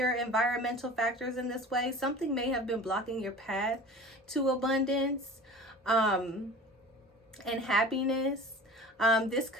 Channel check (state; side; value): normal; both; correlation 0.38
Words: environmental factors in this way. Something may have been blocking your path to abundance and happiness. This